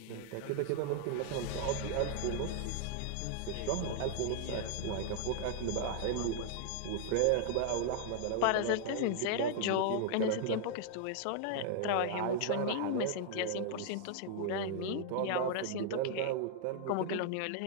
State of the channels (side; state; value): both; different; correlation -0.01